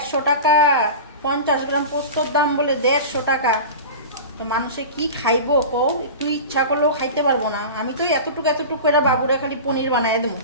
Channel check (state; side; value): inverted; both; correlation -0.31